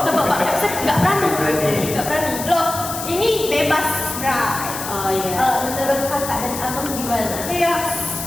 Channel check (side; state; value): left; noise; hiss, 7 dB below the sound